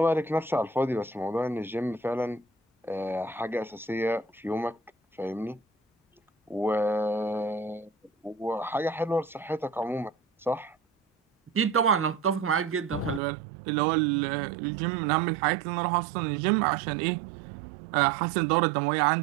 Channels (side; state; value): left; drops out; at 13.2 s